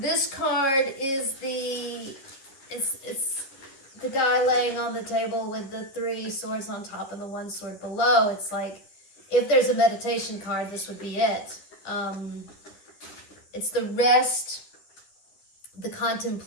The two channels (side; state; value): right; late; 11 ms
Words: card is it's the guy laying on the table with the 3 swords on top and the 1 sword below. It's like, if there's a meditation card, this would be it. It's the rest, the